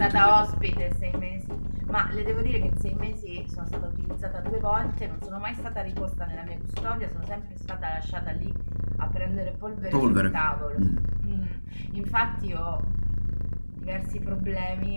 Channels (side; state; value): both; inverted; correlation -1.00